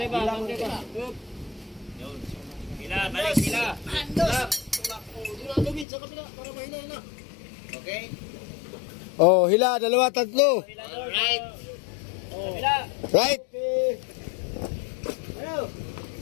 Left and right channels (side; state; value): right; drops out; at 5.9 s